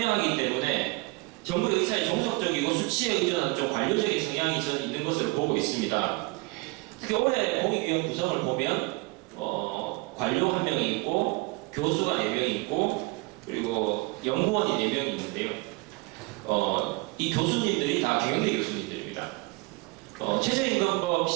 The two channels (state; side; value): quieter; left; 24.4 dB